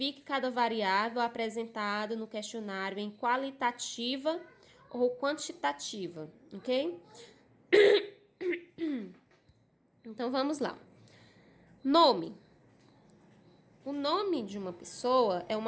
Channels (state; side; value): identical; both; correlation 1.00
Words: cada variável apresentada no questionário em qualitativa ou quantitativa, ok? Então, vamos lá. Nome. O nome de uma pessoa é